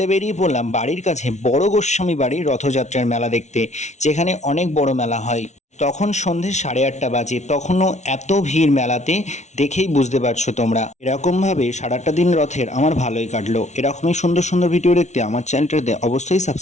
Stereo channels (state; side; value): late; right; 0.33 ms